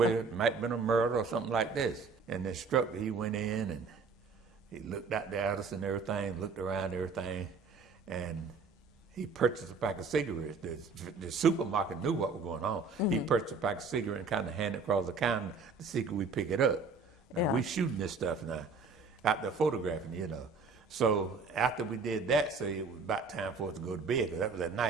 it might have been a murder or something like this. And the instructor, he went in and he looked out at us and everything, looked around and everything, and he purchased a pack of cigarettes. The supermarket knew what was going on. He purchased a pack of cigarettes and kind of handed it across the counter to see could we pick it up. Now, we shooting this stuff now, out there photographing, you know. So after we did that, so it was about time for us to go to bed, because that was at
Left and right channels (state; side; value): quieter; left; 4.5 dB